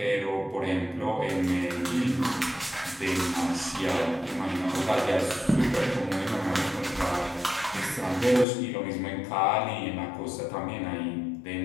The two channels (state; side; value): drops out; right; at 8.5 s